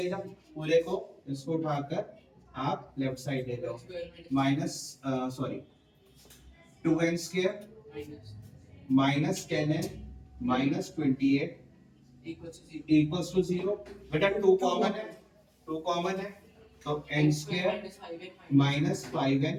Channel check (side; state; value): both; identical; correlation 1.00